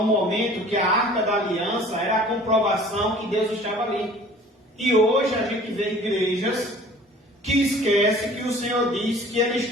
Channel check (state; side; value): normal; both; correlation 0.49